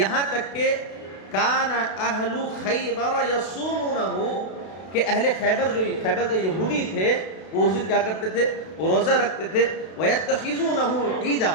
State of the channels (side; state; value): right; late; 32 ms